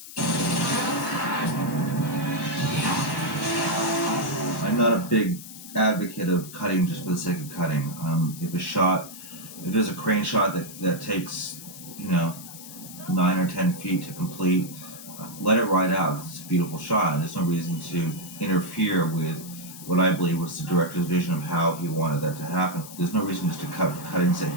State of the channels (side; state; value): left; noise; hiss, 14 dB below the sound